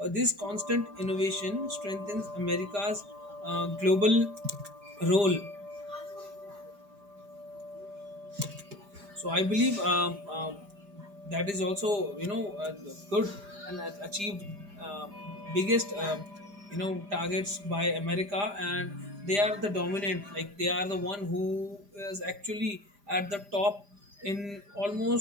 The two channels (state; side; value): late; left; 5.0 ms